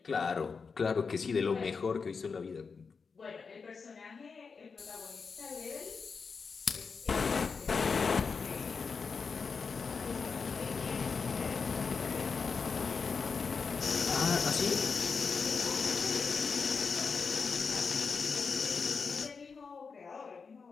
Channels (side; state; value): right; quieter; 5.2 dB